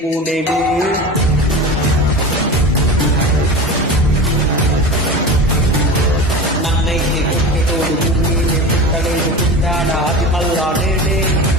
నేనే. నన్నైతే కొట్టేటోడు నేనే, పుట్టలేదు పుట్టాడా అది మళ్ళా నేనే.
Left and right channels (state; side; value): normal; both; correlation 0.30